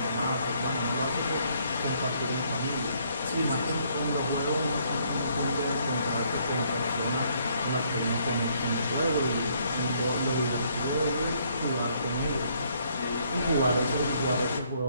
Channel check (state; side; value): inverted; both; correlation -0.68